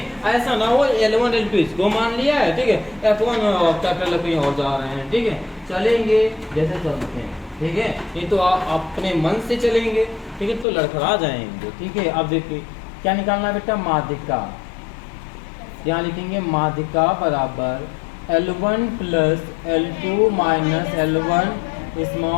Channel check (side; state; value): right; drops out; at 10.7 s